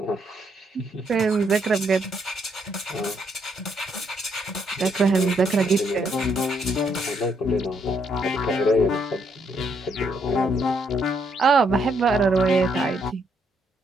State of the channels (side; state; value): both; normal; correlation 0.73